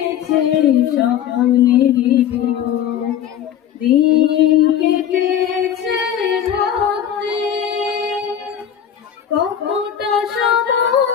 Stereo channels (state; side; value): quieter; right; 9.6 dB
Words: স্বপ্নেরই ভোর, দিন কেটেছে ভাবতে কতটা